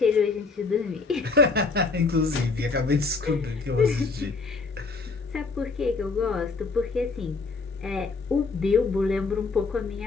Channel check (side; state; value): right; quieter; 4.2 dB